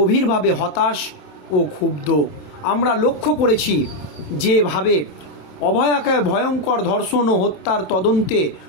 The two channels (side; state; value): right; late; 27 ms